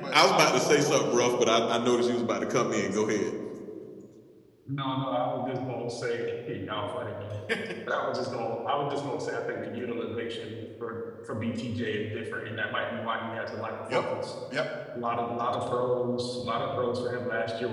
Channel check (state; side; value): identical; both; correlation 1.00